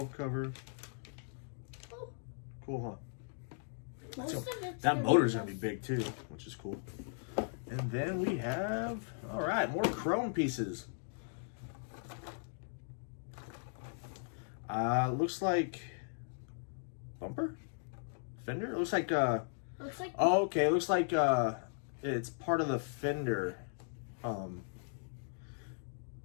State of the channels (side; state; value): right; silent; digital silence